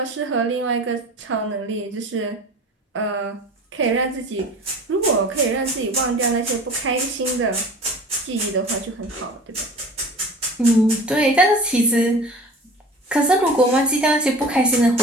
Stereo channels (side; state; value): both; normal; correlation 0.41